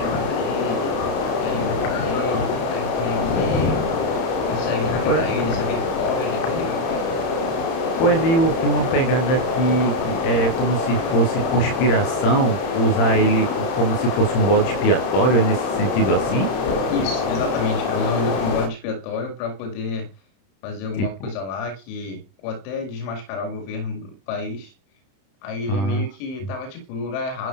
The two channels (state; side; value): late; right; 31 ms